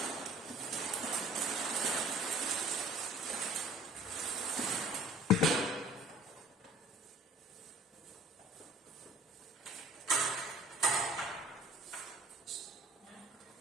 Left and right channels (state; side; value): normal; both; correlation 0.51